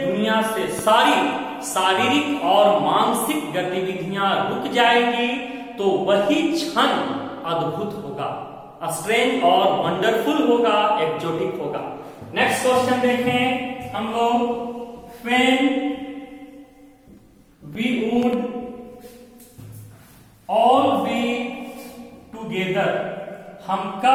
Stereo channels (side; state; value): both; identical; correlation 1.00